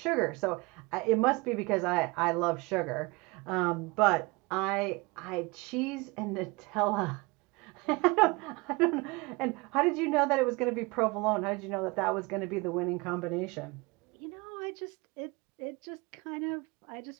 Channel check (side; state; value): left; quieter; 25.9 dB